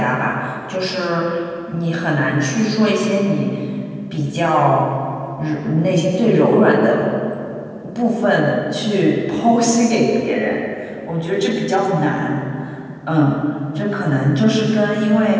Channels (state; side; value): identical; both; correlation 1.00